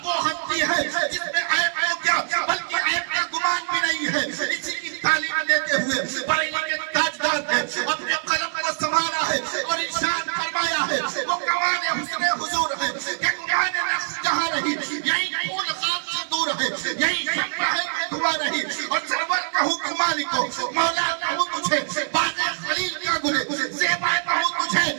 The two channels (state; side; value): silent; left; digital silence